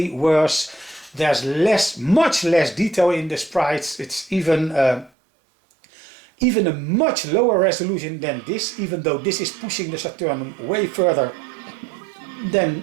worse. There's much less detail in the sprites. It's even a much lower resolution than this, even though this is pushing the Saturn way further than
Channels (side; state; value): left; drops out; at 5.1 s